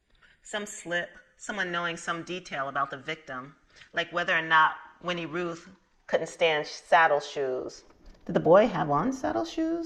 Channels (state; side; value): identical; both; correlation 1.00